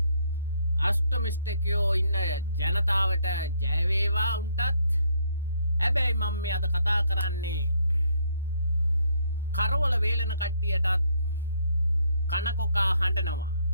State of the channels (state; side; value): inverted; both; correlation -0.69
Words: අෂ්ටමිස්ටකයෝ ඉන්න ජනතාවට ජය වේවා උන්ටත්. හැබැයි මම මේ අද කතා කරන්නේ කරවල වේලන කට්ටියටත් කනකොකා හඬනවා.